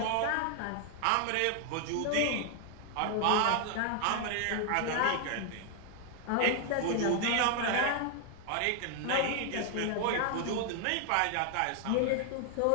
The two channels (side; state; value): both; different; correlation 0.00